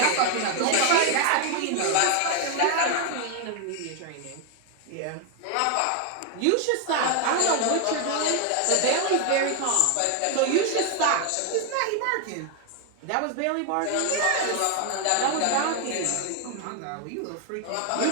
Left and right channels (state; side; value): different; both; correlation 0.01